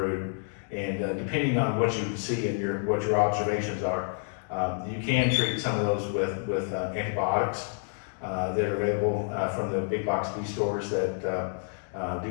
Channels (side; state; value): right; silent; 59 dB below the other